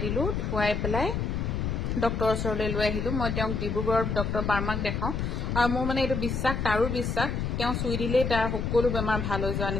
দিলো ধুৱাই পেলাই ডক্টৰৰ ওচৰলৈ লৈ আহিলো মই তেওঁক ডিব্ৰুগড়ৰ ডক্টৰ বাৰ্মাক দেখাও আৰু মোৰ মানে এইটো বিশ্বাস তাৰো বিশ্বাস তেওঁ চুই দিলেই তাৰ সকলো বেমাৰ ভাল হৈ যোৱা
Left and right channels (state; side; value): noise; left; rumble, 1 dB below the sound